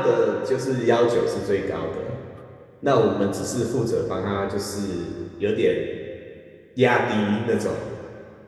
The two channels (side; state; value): both; identical; correlation 1.00